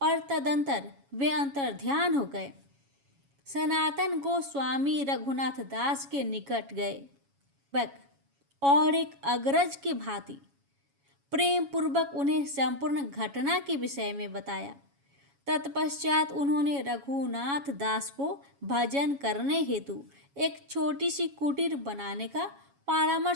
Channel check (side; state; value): left; late; 7.2 ms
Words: तदंतर वे अंतर्ध्यान हो गए। सनातन गोस्वामी रघुनाथ दास के निकट गए और एक अग्रज की भांति प्रेम पूर्वक उन्हें संपूर्ण घटना के विषय में बताया। तत्पश्चात उन्होंने रघुनाथ दास को भजन करने हेतु एक छोटी सी कुटीर बनाने का